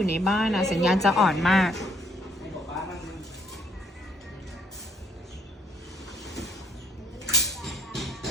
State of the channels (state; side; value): normal; both; correlation 0.66